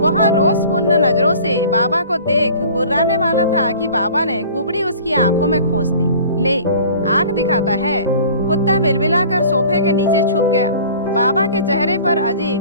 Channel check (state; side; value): inverted; both; correlation -0.46